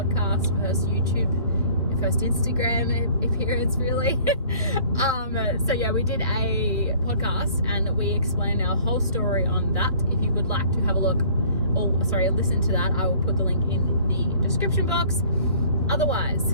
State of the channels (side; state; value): both; inverted; correlation -0.53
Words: first YouTube, first Instagram appearance really. whole story on that. If you would like to have a look, or sorry, listen to that, I will put the link in the description box.